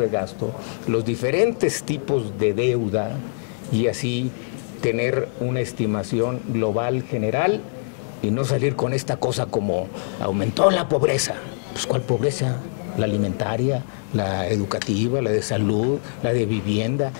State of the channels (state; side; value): silent; right; digital silence